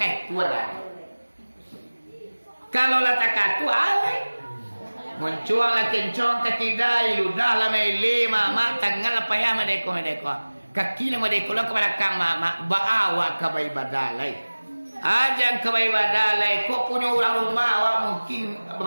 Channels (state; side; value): inverted; both; correlation -1.00